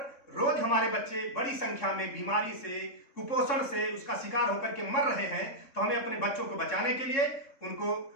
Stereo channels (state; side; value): late; right; 3.7 ms